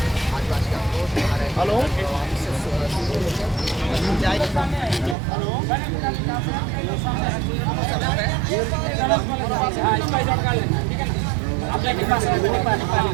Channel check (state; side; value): drops out; left; at 5.2 s